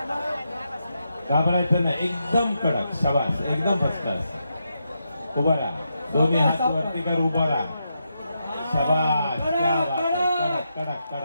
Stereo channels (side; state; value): both; inverted; correlation -0.84